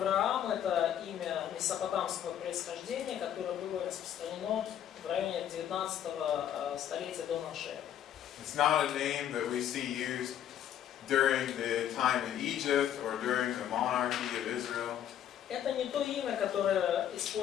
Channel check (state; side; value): quieter; right; 10.3 dB